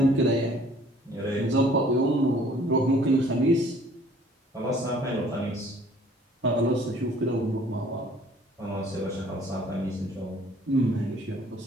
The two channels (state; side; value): normal; both; correlation 0.55